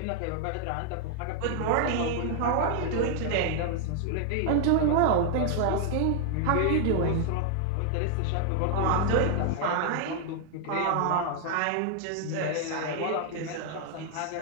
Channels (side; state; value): both; different; correlation 0.00